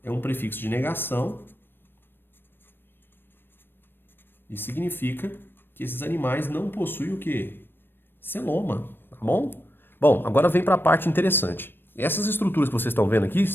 é um prefixo de negação e significa que esses animais não possuem o quê? Celoma, tá bom? Bom, agora vem para a parte interessante. Essas estruturas que vocês estão vendo aqui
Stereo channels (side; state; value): right; late; 0.098 ms